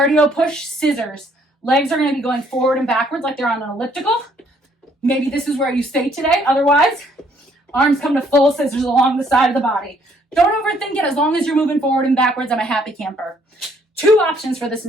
push, scissors. Legs are going to be going forward and backwards like they're on an elliptical. Maybe this is where you stay today. Otherwise, arms come to full scissors along the side of the body. Don't overthink it. As long as you're moving forward and backwards, I'm a happy camper. 2 options for this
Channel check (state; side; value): normal; both; correlation 0.65